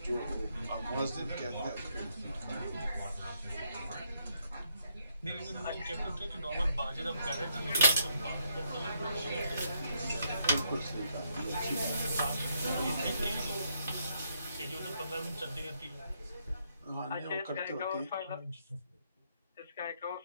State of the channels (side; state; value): both; inverted; correlation -0.75